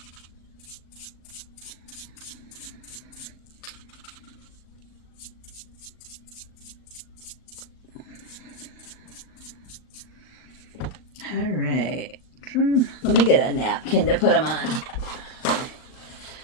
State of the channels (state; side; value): late; right; 39 ms